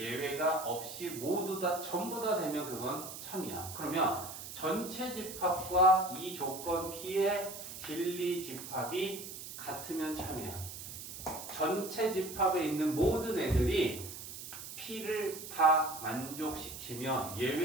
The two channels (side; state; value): right; noise; hiss, 10 dB below the sound